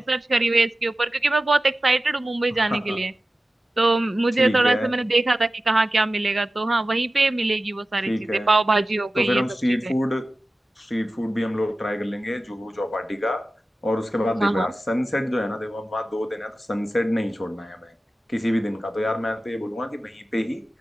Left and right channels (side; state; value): both; normal; correlation 0.95